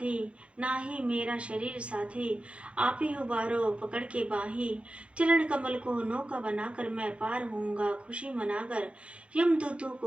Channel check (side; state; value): left; late; 0.061 ms